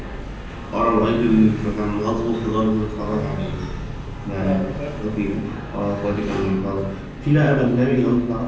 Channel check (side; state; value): both; identical; correlation 1.00